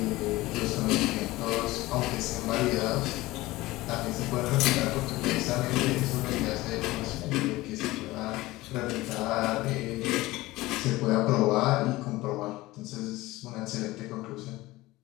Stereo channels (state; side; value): quieter; right; 19.0 dB